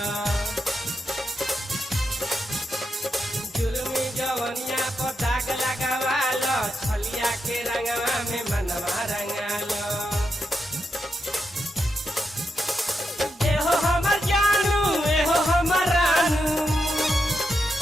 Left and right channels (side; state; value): both; normal; correlation 0.85